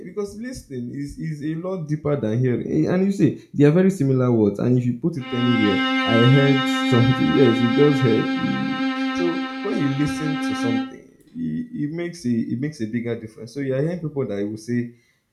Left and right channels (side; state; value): both; identical; correlation 1.00